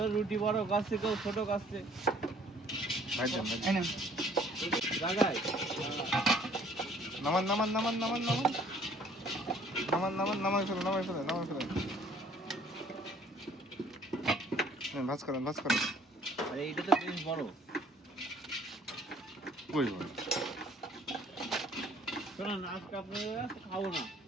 রুটি বড় কাছে কেউ ছোট কাছে জায়গায় নামান নামান নামান নামান নামান নামান নামান নামাই ফেলে নামাই ফেলে নামাই ফেলে ভাজ করেন ভাজ করেন আরে এইটা তো বেশ বড় কই বল শোনেন আজকে আপনারা খাবো না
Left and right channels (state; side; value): normal; both; correlation 0.58